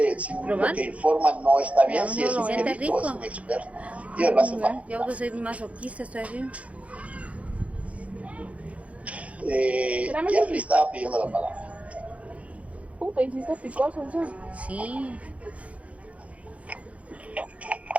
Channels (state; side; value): late; left; 0.065 ms